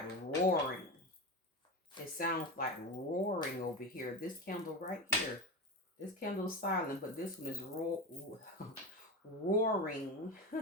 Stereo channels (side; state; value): both; normal; correlation 0.22